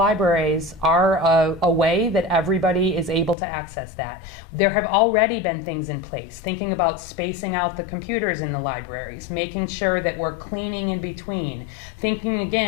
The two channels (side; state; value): right; drops out; at 3.4 s